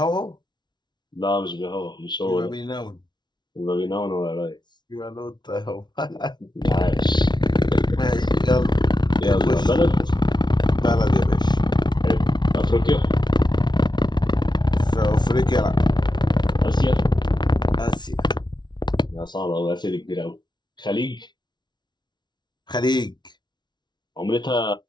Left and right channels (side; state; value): right; late; 0.21 ms